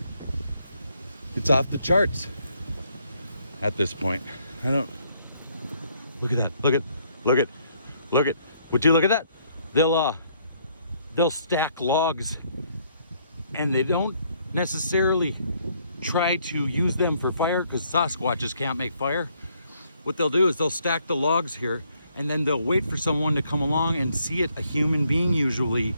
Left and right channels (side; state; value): both; inverted; correlation -0.69